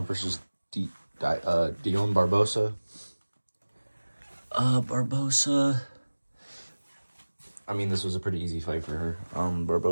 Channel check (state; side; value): inverted; both; correlation -1.00